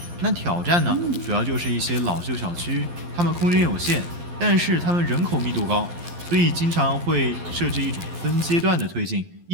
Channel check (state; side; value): late; left; 12 ms